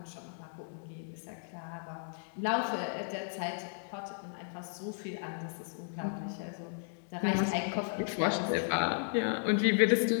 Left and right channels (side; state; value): right; silent; digital silence